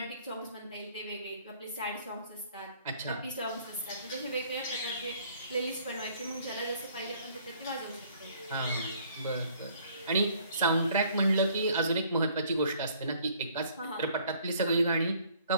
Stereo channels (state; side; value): inverted; both; correlation -0.60